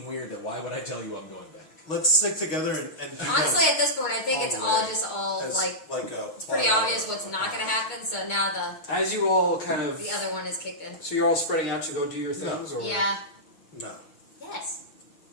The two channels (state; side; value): late; right; 6.4 ms